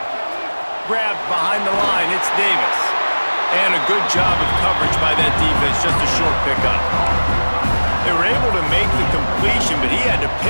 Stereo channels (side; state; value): both; inverted; correlation -1.00